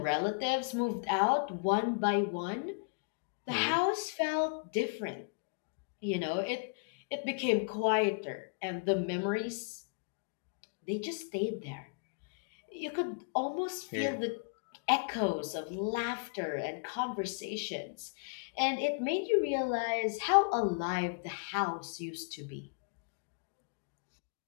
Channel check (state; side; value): quieter; right; 38.6 dB